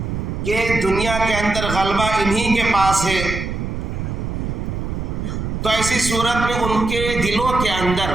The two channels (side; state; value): right; noise; rumble, 4 dB below the sound